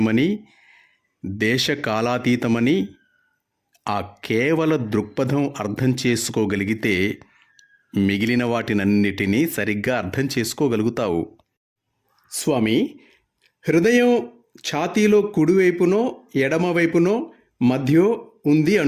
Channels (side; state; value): both; identical; correlation 1.00